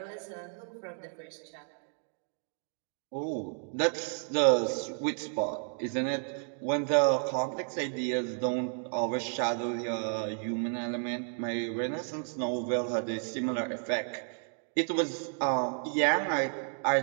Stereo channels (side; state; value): left; silent; 56 dB below the other